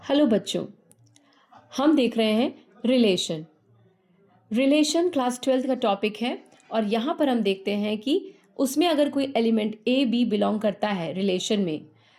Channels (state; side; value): identical; both; correlation 1.00